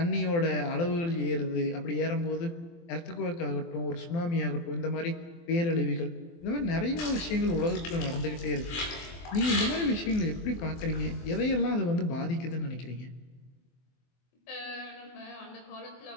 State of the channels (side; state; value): right; late; 24 ms